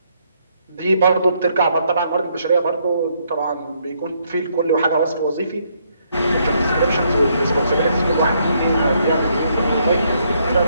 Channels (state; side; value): inverted; both; correlation -0.72